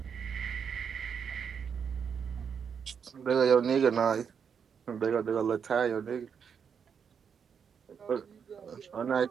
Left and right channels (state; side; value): quieter; left; 7.0 dB